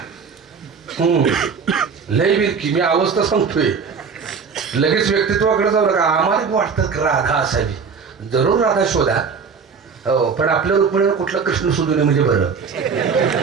लय विरकी. मी अवस्था सांगतोय, लगेच व्यक्तित्वाकडे जाऊ नका. आम्हाला वाटतं राधा असावी. जरूर राधा शोधा. हो, पण आपल्या रुक्मिणीवर कुठला कृष्ण शोधू नये म्हणजे बरं.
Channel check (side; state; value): left; quieter; 5.7 dB